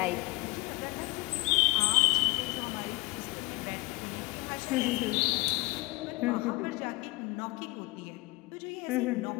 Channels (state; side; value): quieter; right; 22.4 dB